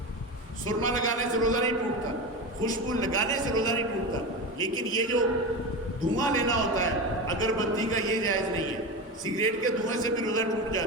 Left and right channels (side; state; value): both; normal; correlation 0.22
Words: سرما لگانے سے روزہ نہیں ٹوٹتا، خوشبو لگانے سے روزہ نہیں ٹوٹتا. لیکن یہ جو دھواں لینا ہوتا ہے اگربتی کا یہ جائز نہیں ہے. سگریٹ کے دھوئیں سے بھی روزہ ٹوٹ